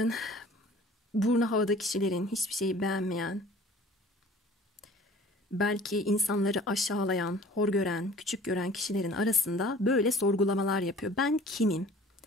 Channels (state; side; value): normal; both; correlation 0.48